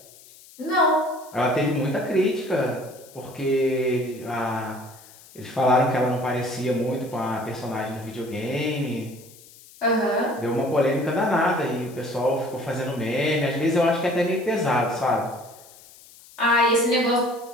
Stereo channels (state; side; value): noise; left; hiss, 22 dB below the sound